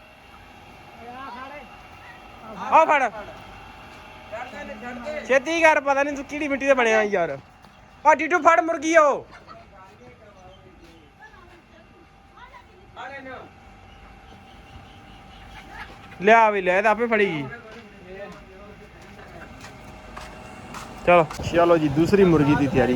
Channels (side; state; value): both; identical; correlation 1.00